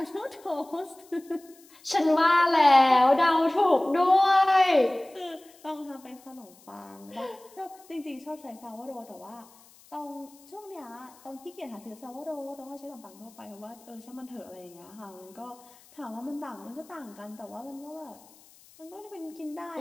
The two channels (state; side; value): noise; left; hiss, 26 dB below the sound